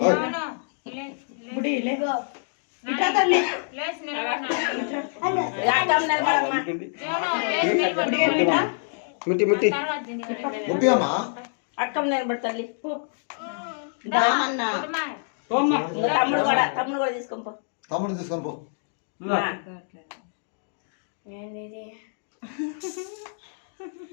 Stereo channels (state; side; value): silent; right; digital silence